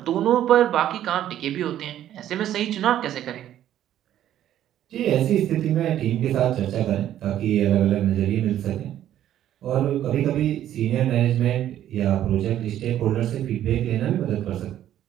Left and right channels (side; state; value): left; quieter; 11.7 dB